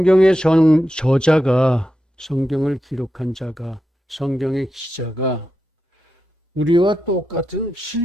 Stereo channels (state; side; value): normal; both; correlation 0.88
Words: 저자가, 성경을 기록한 자가, 성경의 기자가 우리와 똑같은